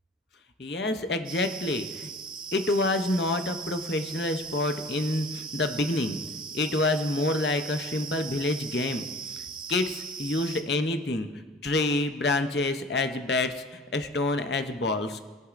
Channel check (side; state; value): both; normal; correlation 0.45